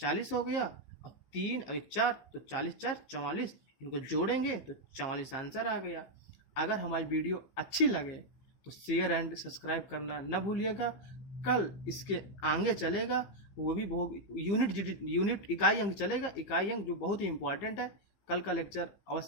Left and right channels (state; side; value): late; right; 15 ms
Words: हो गया, और 3 और 1 4, तो 40 4 44, इनको जोड़ेंगे तो 44 आंसर आ गया। अगर हमारी वीडियो अच्छी लगे तो शेयर एंड सब्सक्राइब करना न भूलिएगा। कल इसके आगे चलेगा, वो भी बहुत यूनिट इकाई अंक चलेगा, इकाई अंक जो बहुत ही इंपॉर्टेंट है। कल का लेक्चर